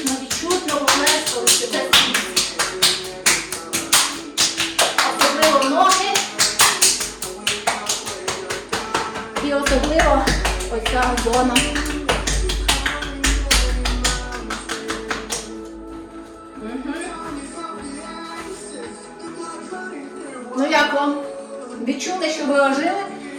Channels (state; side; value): identical; both; correlation 1.00